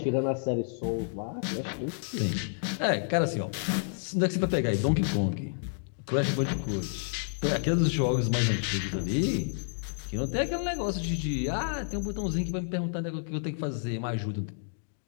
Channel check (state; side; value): silent; right; digital silence